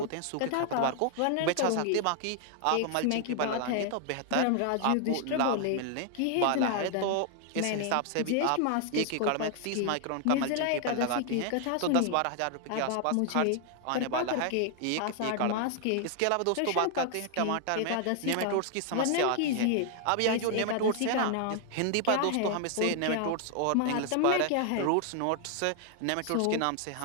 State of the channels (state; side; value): different; both; correlation 0.00